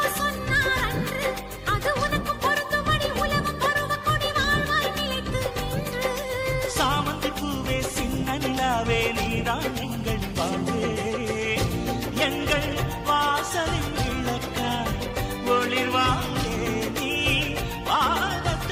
சொன்னார் அன்று. அது உனக்கு பொருந்தும்படி உலகம் பருவ கொடி வாழ்வாய் நிலைத்து நின்று. சாமந்தி பூவே சின்ன நிலாவே நீதான் எங்கள் வாழ்வே. எங்கள் வாசலில் விளக்காய் ஒளிர்வாயே நீ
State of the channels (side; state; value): both; identical; correlation 1.00